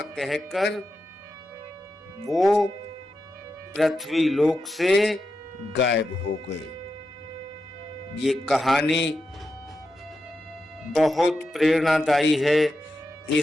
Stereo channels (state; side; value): normal; both; correlation 0.88